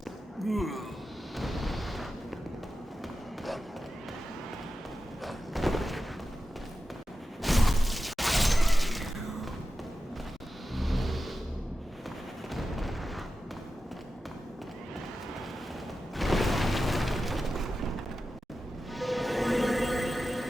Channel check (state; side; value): normal; both; correlation 0.92